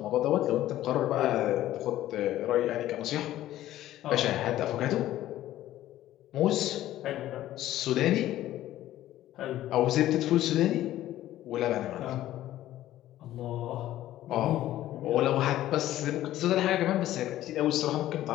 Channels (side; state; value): right; quieter; 13.9 dB